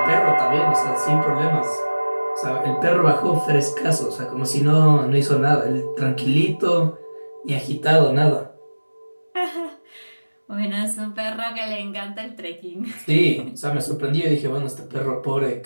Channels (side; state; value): both; inverted; correlation -1.00